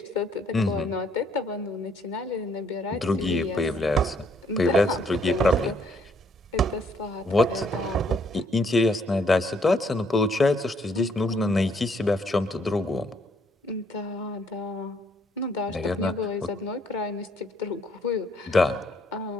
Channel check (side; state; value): both; normal; correlation 0.68